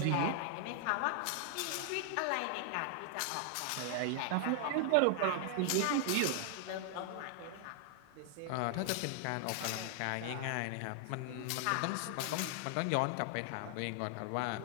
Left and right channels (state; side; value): different; both; correlation 0.00